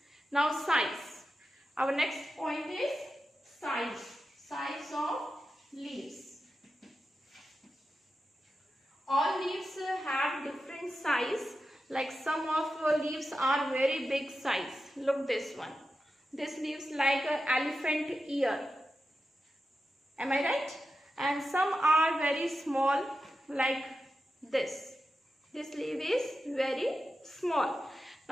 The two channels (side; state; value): both; normal; correlation 0.90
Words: Now size. Our next point is size. Size of leaves. All leaves have different size. Like some of leaves are very big size. Look this one. This leaves like an elephant ear. Am I right? And some are very small, like this. This leaf is very small.